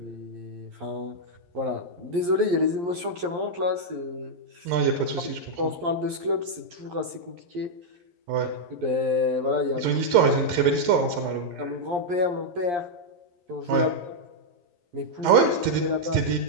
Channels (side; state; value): left; late; 11 ms